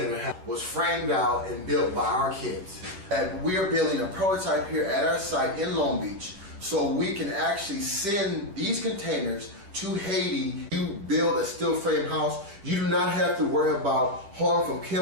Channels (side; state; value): left; late; 10 ms